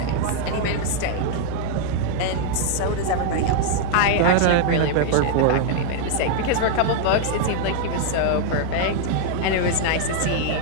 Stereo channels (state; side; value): different; both; correlation 0.00